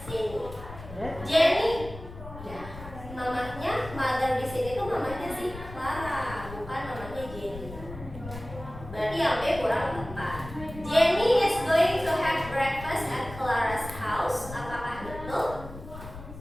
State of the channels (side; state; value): left; noise; rumble, 13 dB below the sound